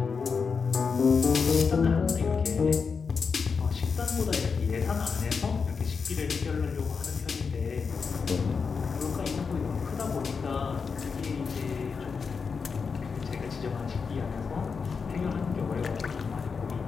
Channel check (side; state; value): right; quieter; 5.4 dB